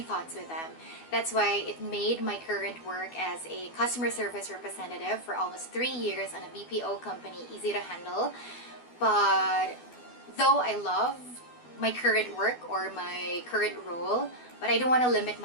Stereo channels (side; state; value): right; late; 12 ms